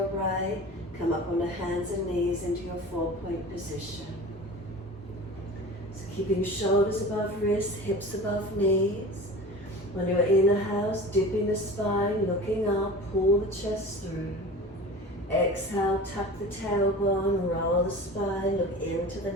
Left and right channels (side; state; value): both; normal; correlation 0.36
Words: right, come up on the hands and knees into your 4-point position. So keeping shoulders above wrists, hips above knees. On your inhale, dipping the spine, looking up, pull the chest through. Exhale, tuck the tailbone, roll the spine, look into the